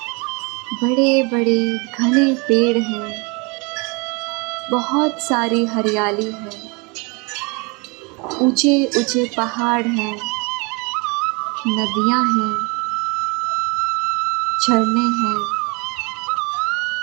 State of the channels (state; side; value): quieter; left; 29.7 dB